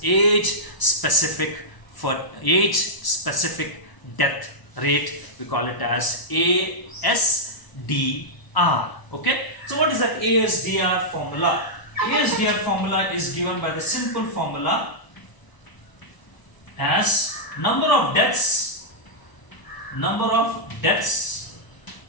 age specific death rate. We call it as ASDR. Okay, so what is that ASDR formula? ASDR formula is given by the simple formula as number of deaths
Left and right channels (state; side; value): late; right; 1.0 ms